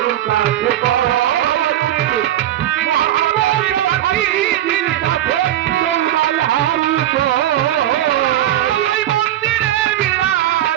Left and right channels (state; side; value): quieter; left; 12.7 dB